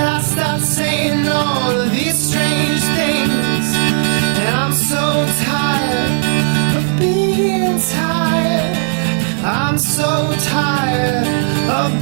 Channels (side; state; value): left; silent; digital silence